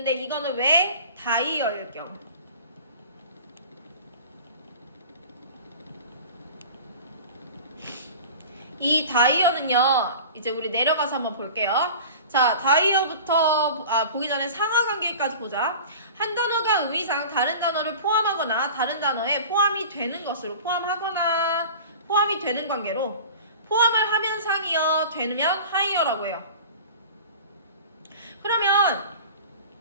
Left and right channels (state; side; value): inverted; both; correlation -0.38